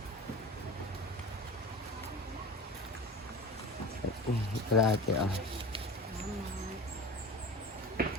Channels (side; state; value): both; normal; correlation 0.33